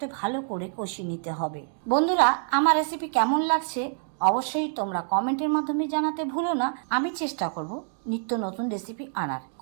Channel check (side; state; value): left; silent; digital silence